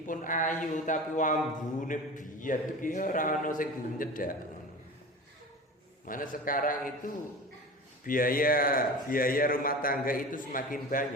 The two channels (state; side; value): normal; both; correlation 0.33